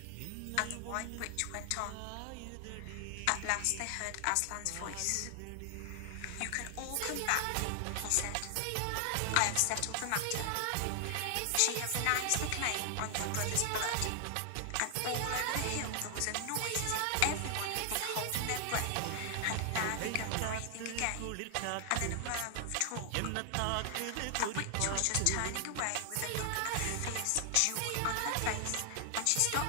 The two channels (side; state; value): both; different; correlation 0.00